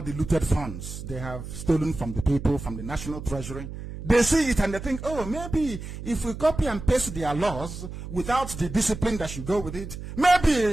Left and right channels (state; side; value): noise; right; hum, 10 dB below the sound